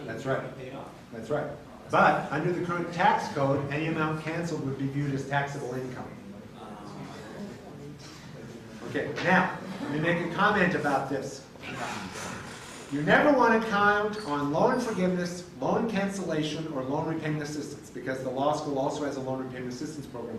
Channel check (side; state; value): both; identical; correlation 1.00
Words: and That's you right. pay it off? That's right. But under the current tax code, any amount canceled would be viewed as taxable income. Okay, now, let me make a comment about this. You never want to count on loan forgiveness, loan cancellation, or loan repayment assistance, because the law school also has a loan repayment assistance program